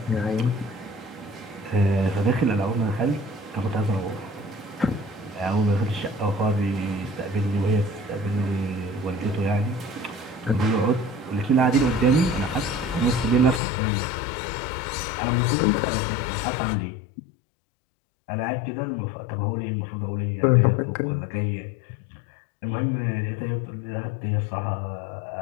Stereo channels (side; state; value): right; drops out; at 13.6 s